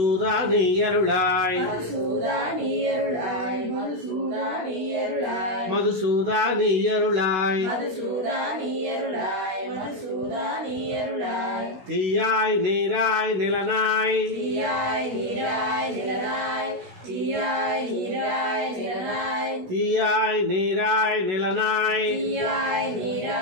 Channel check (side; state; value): left; late; 16 ms